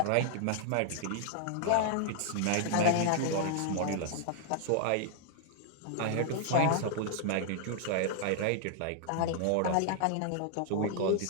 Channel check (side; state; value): both; different; correlation -0.01